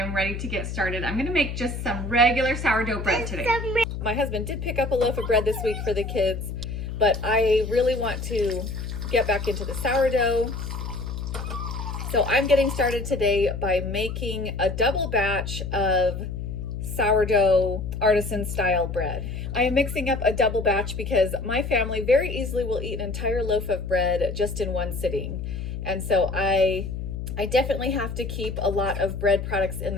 ready to get started. I'm gonna make just some regular sourdough bread today. My husband did pick up a loaf of bread this week for the kids, but I really want to get back into the sourdough. So I'm getting started today by making a double batch of sourdough artisan style bread. I am mixing up a double batch because my family very easily will eat an entire loaf of bread just in one sitting. And so I definitely have to keep a lot of bread products in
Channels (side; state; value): left; noise; hum, 6 dB below the sound